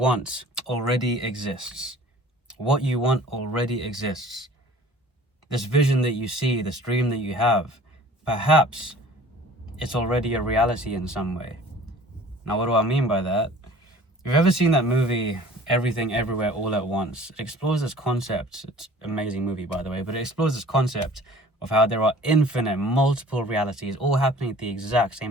already exists. What you want already exists. This vision that you see, this dream that you have, perhaps it's already a reality in some way. Now, what do I mean by that? If you've ever seen that movie, Everything Everywhere All at Once, it explores this concept. It's an amazing movie, by the way, but it explores this concept of how there are infinite, multiple realities all happening at the exact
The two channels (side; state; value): both; normal; correlation 0.48